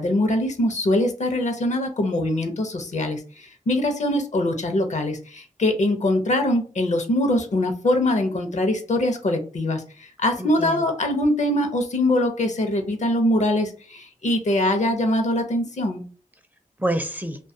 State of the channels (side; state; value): both; normal; correlation 0.63